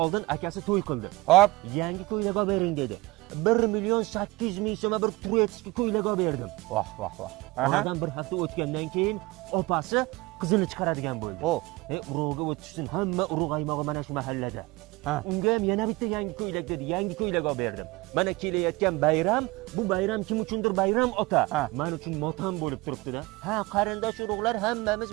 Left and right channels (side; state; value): left; quieter; 22.0 dB